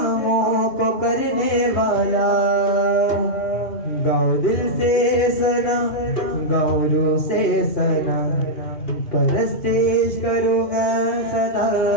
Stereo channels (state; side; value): late; right; 2.7 ms